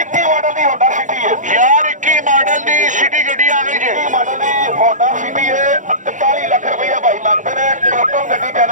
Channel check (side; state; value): left; late; 0.36 ms